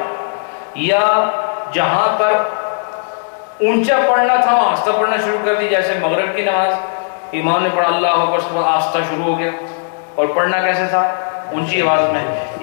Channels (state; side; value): silent; right; digital silence